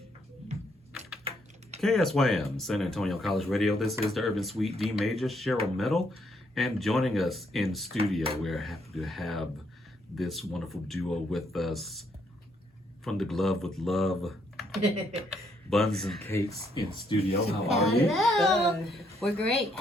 KSYM, San Antonio College Radio. This is the Urban Suite D Major, Cheryl Metal. And joining us in studio, we're happy to have this wonderful duo with us from the Glove with Love, Bunz and Cakes in studio. How are you? Hello. We're great.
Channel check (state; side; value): normal; both; correlation 0.73